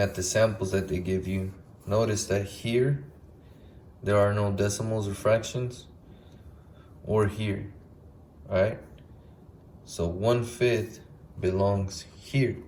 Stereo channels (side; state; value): both; identical; correlation 1.00